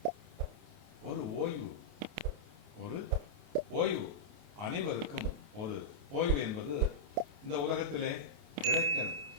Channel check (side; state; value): left; late; 28 ms